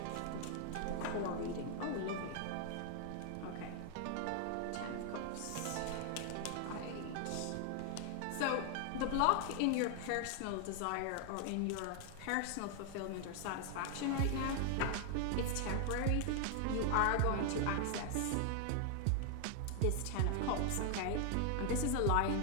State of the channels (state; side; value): different; both; correlation 0.00